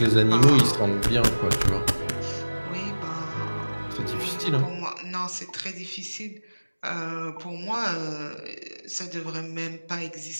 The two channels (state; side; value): inverted; both; correlation -1.00